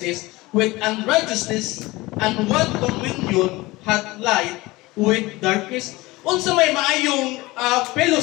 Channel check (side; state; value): right; quieter; 20.8 dB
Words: with unrighteousness, and what communion hath light with darkness? Unsa may maayong